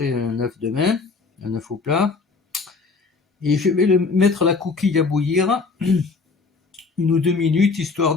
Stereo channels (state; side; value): quieter; right; 4.4 dB